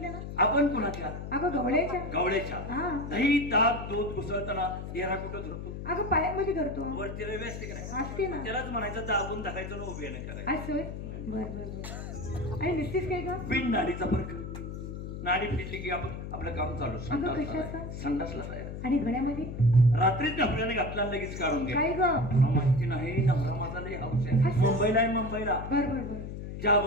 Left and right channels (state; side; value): noise; left; hum, 8 dB below the sound